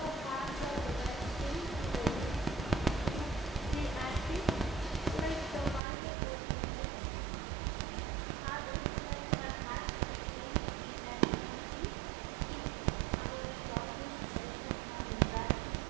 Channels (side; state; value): left; drops out; at 5.8 s